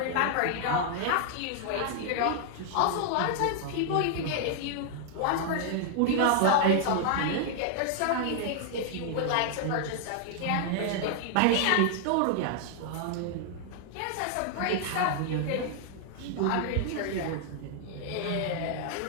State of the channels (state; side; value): different; both; correlation 0.00